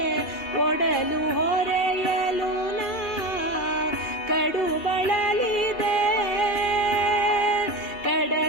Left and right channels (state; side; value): late; right; 2.7 ms